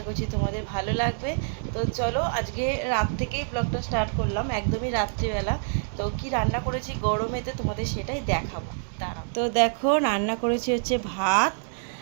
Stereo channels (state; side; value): silent; left; digital silence